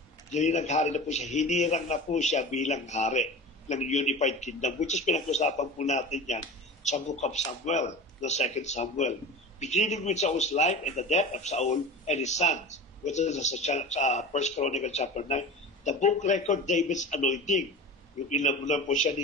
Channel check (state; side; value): normal; both; correlation 0.33